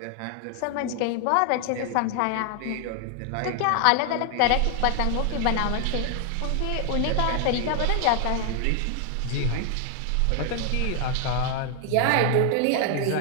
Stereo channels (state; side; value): different; both; correlation 0.00